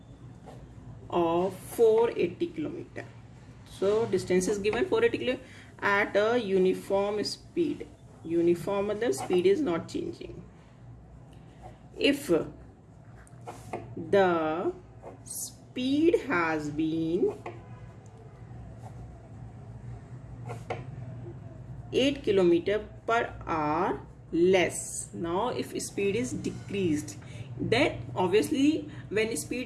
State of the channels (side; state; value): both; identical; correlation 1.00